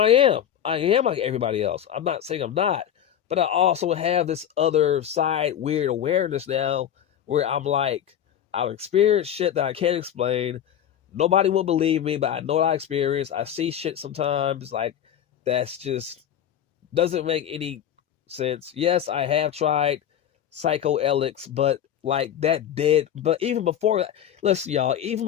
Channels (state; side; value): quieter; right; 9.9 dB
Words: I am. I am like everybody else. I'm not saying I'm not, but I also have this other side weird awareness now where I'm like, I've experienced shit that I can't explain. Nobody will believe me, but I know what I experienced. I see shit sometimes like that's just doesn't make any sense. Yes, I have tried psychoelics, but like that did. But even before that, listen, y'all, even